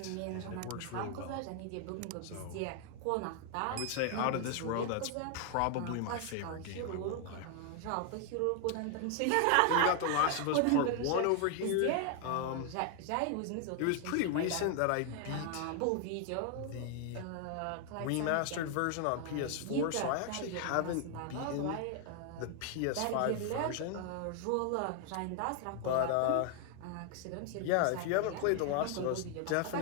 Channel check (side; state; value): both; different; correlation 0.00